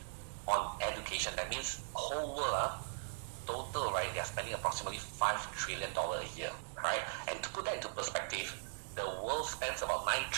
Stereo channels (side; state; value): left; silent; digital silence